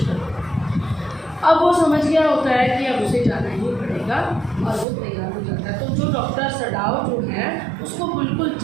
अब वो समझ गया होता है कि अब उसे जाना ही पड़ेगा और वो तैयार हो जाता है। तो जो डॉक्टर सदाव जो है उसको बिल्कुल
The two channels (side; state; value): left; drops out; at 4.9 s